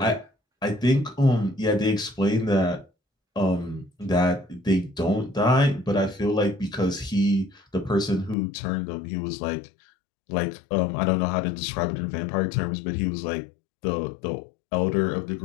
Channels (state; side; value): drops out; right; at 8.3 s